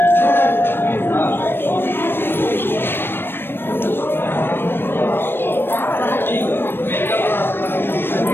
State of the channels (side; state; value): right; late; 0.10 ms